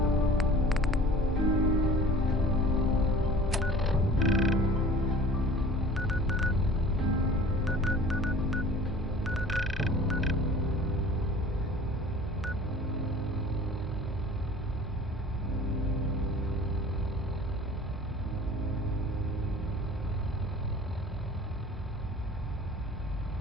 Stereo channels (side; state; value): both; normal; correlation 0.45